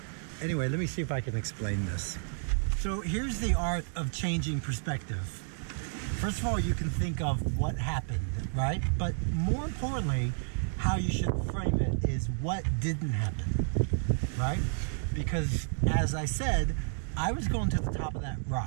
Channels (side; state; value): left; silent; digital silence